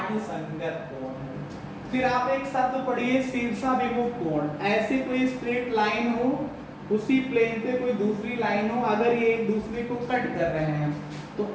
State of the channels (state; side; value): identical; both; correlation 1.00